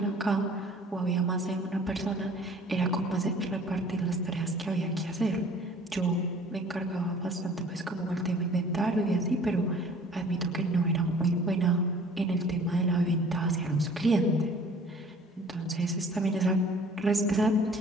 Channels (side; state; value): both; normal; correlation 0.51